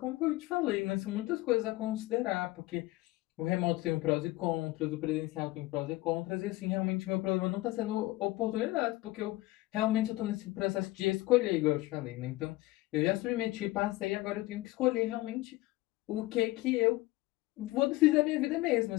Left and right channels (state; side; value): quieter; right; 19.1 dB